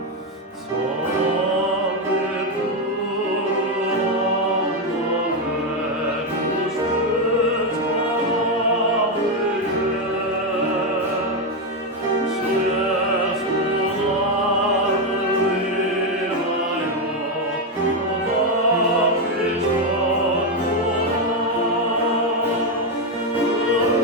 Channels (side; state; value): both; normal; correlation 0.06